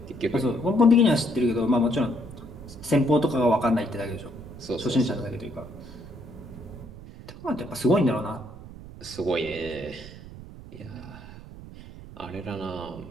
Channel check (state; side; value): noise; right; rumble, 15 dB below the sound